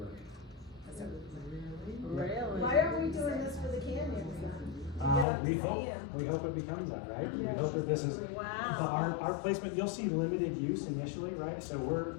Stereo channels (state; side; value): drops out; right; at 5.2 s